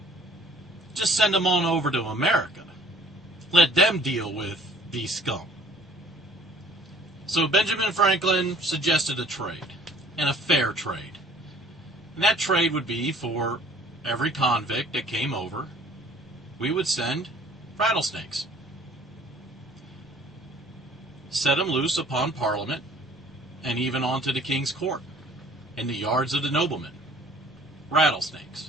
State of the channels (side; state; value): both; normal; correlation 0.54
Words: Just send them on over to America. Let them deal with these scum. So Benjamin Franklin suggested a trade, and a fair trade. And that trade would be for every convict that came over, we would send rattlesnakes. Set them loose upon Parliament, and even onto the King's Court, in the yards of the noblemen.